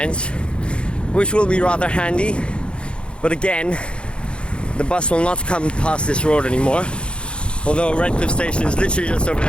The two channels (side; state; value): right; late; 0.056 ms